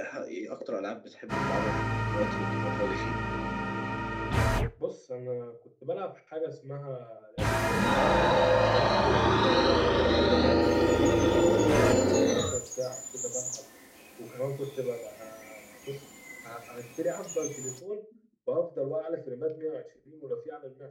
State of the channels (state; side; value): identical; both; correlation 1.00